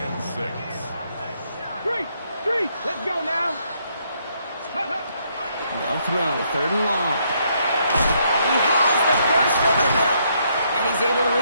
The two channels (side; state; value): both; inverted; correlation -0.73